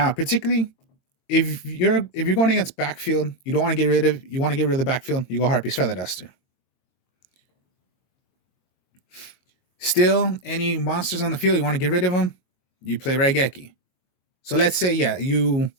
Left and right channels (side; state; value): right; late; 22 ms